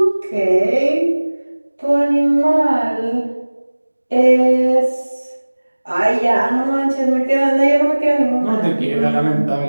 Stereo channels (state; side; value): inverted; both; correlation -1.00